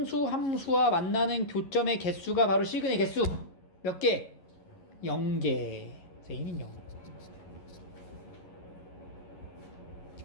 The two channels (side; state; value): right; late; 11 ms